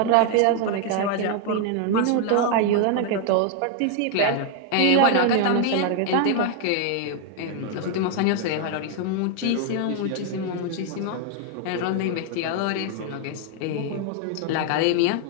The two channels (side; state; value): both; different; correlation 0.00